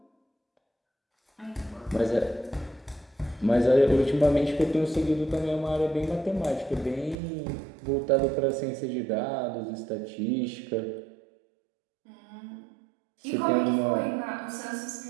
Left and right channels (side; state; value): left; drops out; at 7.2 s